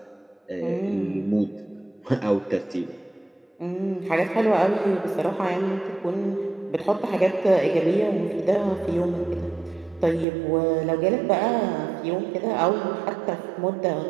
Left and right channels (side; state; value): left; drops out; at 10.2 s